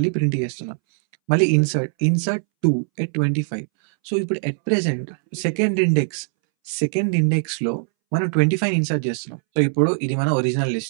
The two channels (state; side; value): silent; left; 64 dB below the other